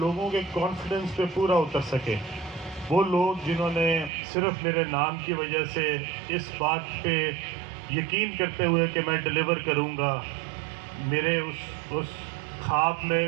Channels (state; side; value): drops out; left; at 4.1 s